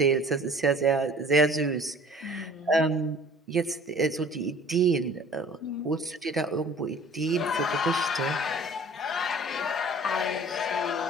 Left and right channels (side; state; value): both; normal; correlation 0.49